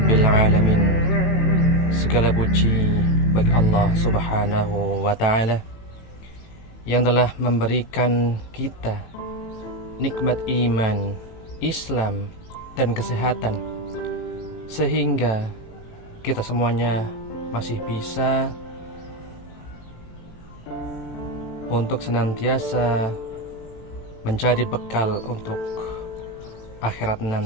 alamin. Segala puji bagi Allah Subhanahu wa taala yang telah memberikan kita nikmat iman, Islam dan kesehatan, sehingga kita semuanya masih bisa untuk senantiasa mencari bekal untuk akhirat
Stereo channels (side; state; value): right; late; 18 ms